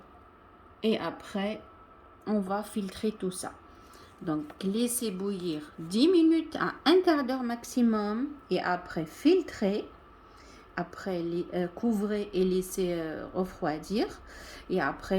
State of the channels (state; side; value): identical; both; correlation 1.00